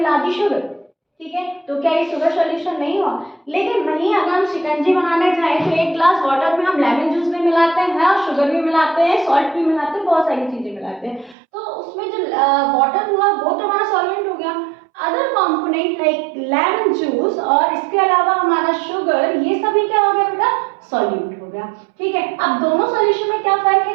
दी शुगर। ठीक है, तो क्या ये शुगर सॉल्यूशन नहीं हुआ? लेकिन वहीं अगर हम शिकंजी बनाने जाएं तो एक ग्लास वाटर में हम लेमन जूस भी मिलाते हैं और शुगर भी मिलाते हैं, सॉल्ट भी मिलाते हैं, बहुत सारी चीजें मिलाते हैं, तो उसमें जो वाटर हुआ वो तो हमारा सॉल्वेंट हो गया। Other component like lemon juice और इसके अलावा हमारा शुगर, ये सभी क्या हो गया बेटा? सॉल्यूट हो गया। ठीक है, अब दोनों सॉल्यूशन में क्या फर्क है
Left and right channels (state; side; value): drops out; left; at 11.4 s